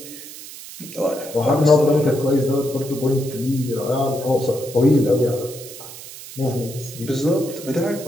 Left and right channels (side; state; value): right; noise; hiss, 14 dB below the sound